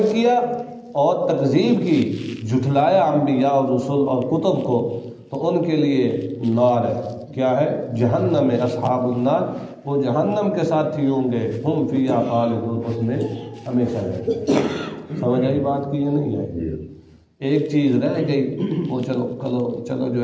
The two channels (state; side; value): identical; both; correlation 1.00